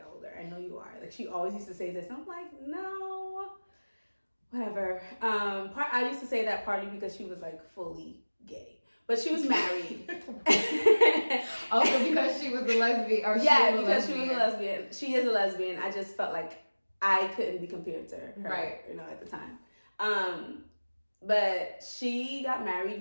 older. I know you are. Like, she always used to say this. And I'm like, no, whatever. I used to say that partly because she was, like, fully gay. But she was married. Also because she was a lesbian? Or because she was a lesbian. She is a lesbian. I just felt like I couldn't be compared to her, right? At the time. But she got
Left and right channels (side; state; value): both; inverted; correlation -1.00